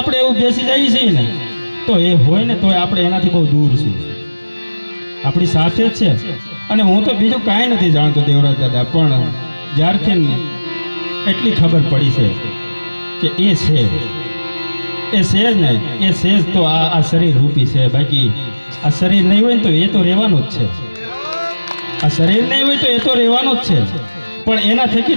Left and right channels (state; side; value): inverted; both; correlation -1.00